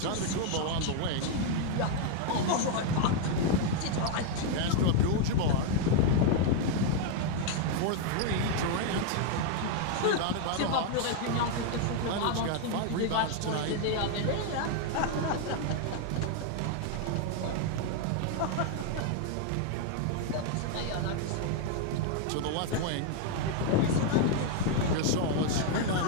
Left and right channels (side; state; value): both; different; correlation 0.00